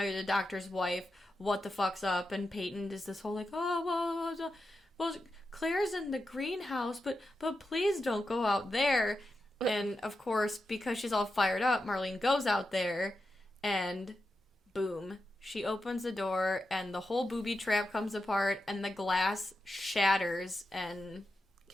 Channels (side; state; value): both; normal; correlation 0.89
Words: you're the doctor's wife. What the fuck's up? And Peyton does this whole, like, oh, well, Claire's in the greenhouse, but please don't go out there. And, of course, because she's all fired up, Marlene goes out there, and boom. She opens the door, and the whole booby trap comes apart, and the glass shatters and...